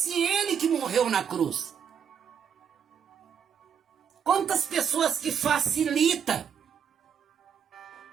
ele que morreu na cruz? Quantas pessoas que facilitam,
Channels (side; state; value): left; quieter; 7.7 dB